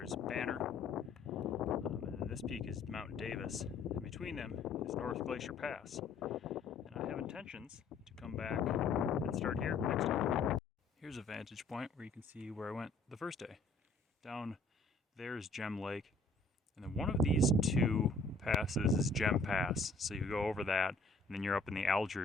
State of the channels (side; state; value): right; quieter; 3.5 dB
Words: is Banner. And then this peak is Mount Davis. And between them is North Glacier Pass. And I have intentions to come back and start here next time. Here's a vantage point where you can see where I went the first day. Down there's Gem Lake. And then one of these two passes is Gem Pass. So you go over that and then you're up in the